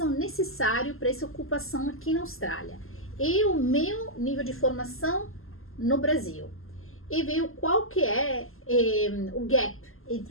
necessário para essa ocupação aqui na Austrália. E o meu nível de formação no Brasil. E ver qual que é o gap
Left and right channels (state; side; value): late; right; 0.62 ms